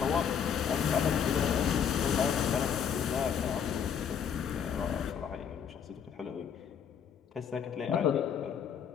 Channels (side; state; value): right; quieter; 7.7 dB